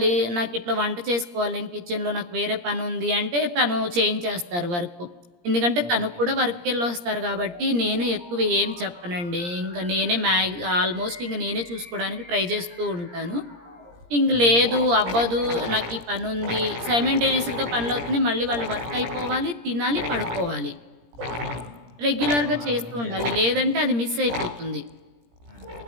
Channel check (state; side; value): late; left; 17 ms